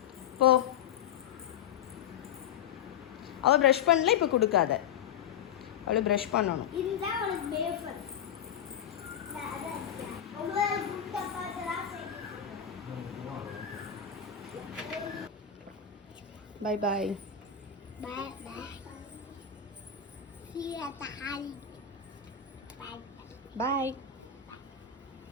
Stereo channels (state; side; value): quieter; right; 8.6 dB